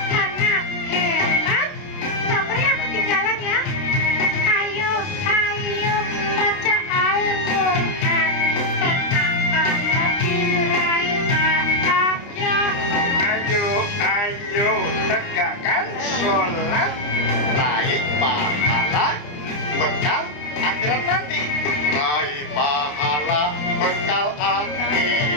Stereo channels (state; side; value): late; right; 30 ms